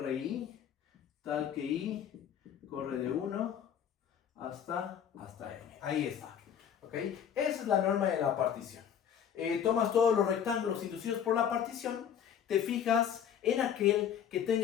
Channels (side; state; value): right; quieter; 8.7 dB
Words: tal que I corre de 1 hasta M. Ahí está. ¿Ok? Esa es la norma de la partición. Tomas todos los rectángulos inducidos por la partición, te fijas en aquel que